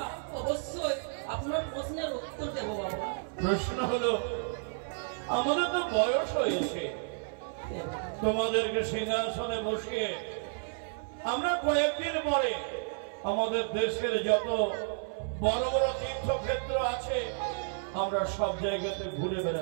অবশ্যই আপনার প্রশ্নের উত্তর দেব বাবা। প্রশ্ন হলো, আমাদের তো বয়স হয়েছে, তোমাদেরকে সিংহাসনে বসিয়ে আমরা কয়েকদিন পরে আমাদের দেশের যত বড় বড় তীর্থক্ষেত্র আছে আমরা সব জায়গাতে ঘুরে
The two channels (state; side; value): silent; left; 57 dB below the other